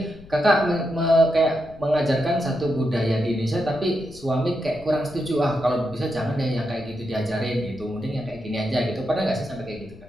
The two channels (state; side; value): noise; left; rumble, 19 dB below the sound